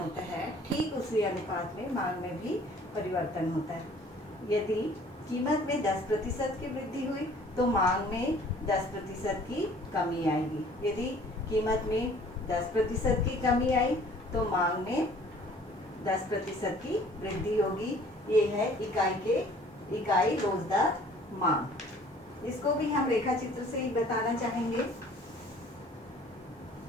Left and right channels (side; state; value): both; normal; correlation 0.53